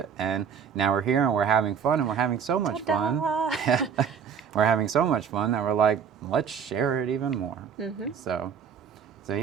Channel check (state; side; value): quieter; left; 7.3 dB